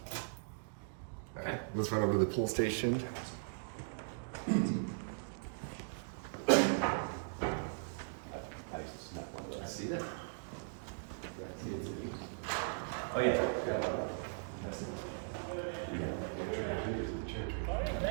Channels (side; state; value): left; silent; digital silence